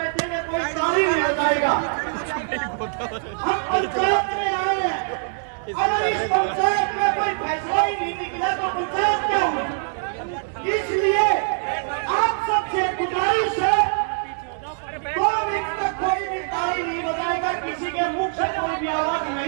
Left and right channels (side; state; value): left; silent; 63 dB below the other